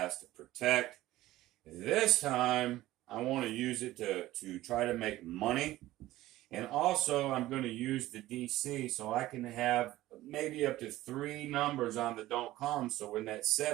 to protect. This time I want to use it to try to make money. And also, I'm going to use the DC so I can have maybe up to 3 numbers on the don't come. So when that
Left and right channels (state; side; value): quieter; left; 16.1 dB